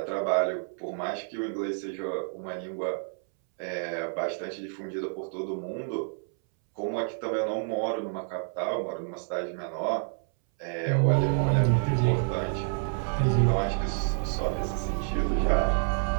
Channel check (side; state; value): left; silent; 59 dB below the other